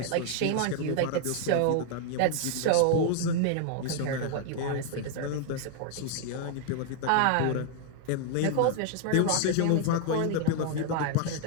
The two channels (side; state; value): both; different; correlation 0.00